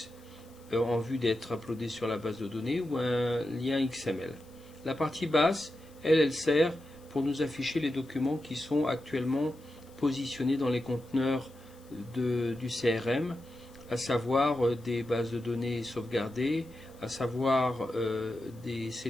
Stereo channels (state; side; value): noise; left; hiss, 28 dB below the sound